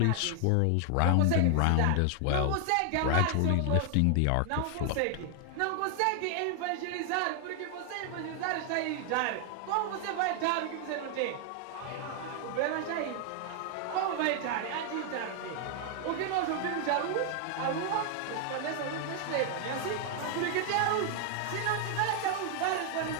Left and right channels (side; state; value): both; different; correlation 0.00